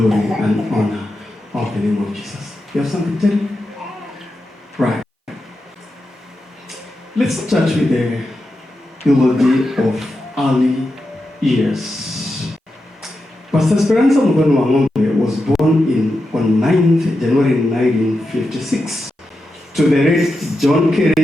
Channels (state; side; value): normal; both; correlation 0.89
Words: and honor of the name of Jesus. You have something to tell me? Right. Let's start with the eulogy of early years. Pastor Speranza Wang'Ombe was born on 9th January 1956 to the late John